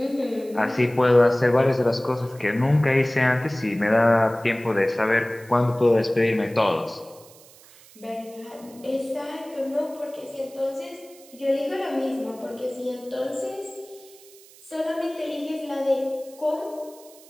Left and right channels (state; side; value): noise; right; hiss, 23 dB below the sound